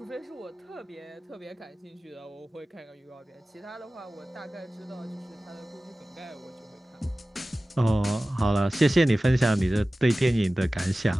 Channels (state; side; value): normal; both; correlation 0.97